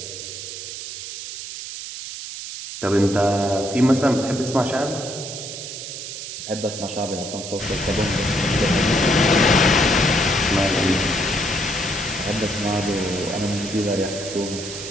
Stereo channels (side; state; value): right; noise; hiss, 9 dB below the sound